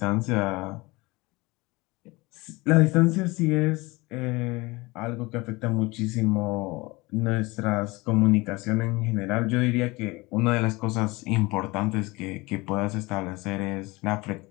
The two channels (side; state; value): right; quieter; 23.2 dB